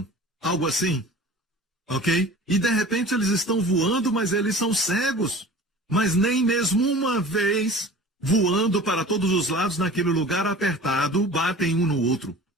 algo assim, ok? E de repente eles estão voando, mas eles são cegos, mas nem mesmo uma vez voando para todos os lados naquele lugar apertado, batem um no outro.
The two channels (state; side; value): normal; both; correlation 0.41